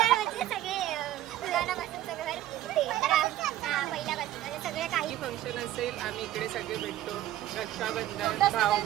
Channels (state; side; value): quieter; left; 13.6 dB